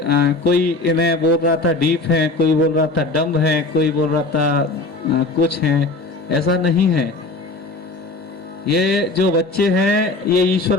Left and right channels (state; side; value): quieter; right; 3.3 dB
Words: कोई इन्हें बोल रहा था डीप है, कोई बोल रहा था डम्ब है, कोई बोल रहा था कुछ है, ऐसा नहीं है। ये जो बच्चे हैं ये ईश्वर